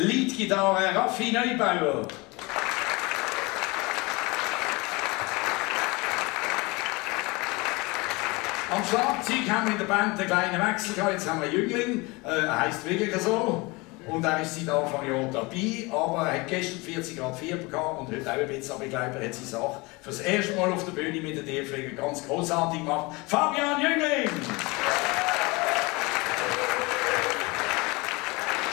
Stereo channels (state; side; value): quieter; right; 25.2 dB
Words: Raffi Neubauer. Am Schlagzeug haben wir in der Band einen kleinen Wechsel gehabt. Jetzt haben wir einen Jüngling, er heisst wirklich so. Und er ist seit Anfang Jahr dabei, aber er hat gestern 40 Grad Fieber gehabt und heute auch ein bisschen, aber ich glaube, er hat seine Sache für das erste Mal auf der Bühne mit den Tierfliegern ganz großartig gemacht. Fabian Jüngling!